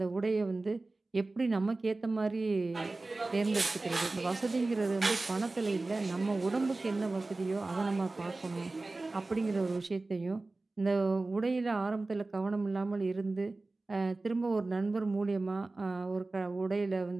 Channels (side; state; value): left; quieter; 3.2 dB